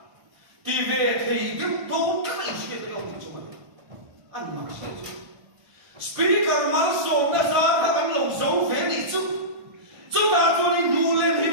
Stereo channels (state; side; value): late; left; 1.6 ms